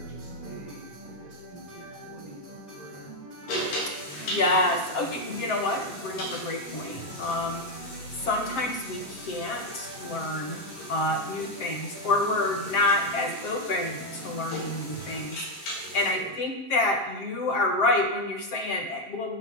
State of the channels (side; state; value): right; late; 7.6 ms